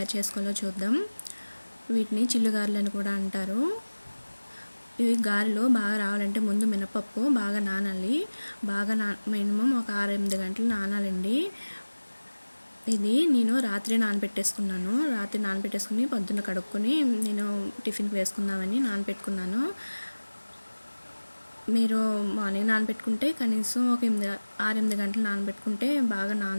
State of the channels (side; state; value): both; inverted; correlation -1.00